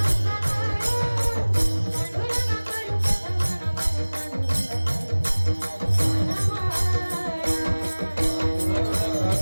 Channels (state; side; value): inverted; both; correlation -1.00